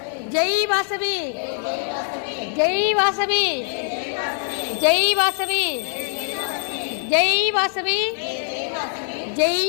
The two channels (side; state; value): right; silent; 64 dB below the other